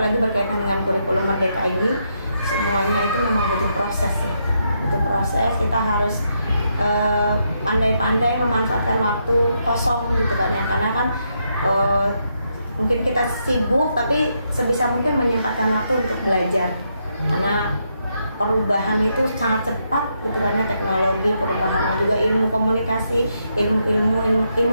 berkaitan dengan kurikulum Merdeka ini. Semuanya itu memang butuh proses ya, butuh proses. Kita harus pandai-pandai memanfaatkan waktu kosong gitu kan ya, karena kan mungkin kita sibuk, tapi sebisa mungkin menyempatkan waktu untuk belajar, karena perubahan itu sangat cepat gitu kan ya, teknologi perubahannya juga, ilmu komunikasi, ilmu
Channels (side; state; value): both; inverted; correlation -0.79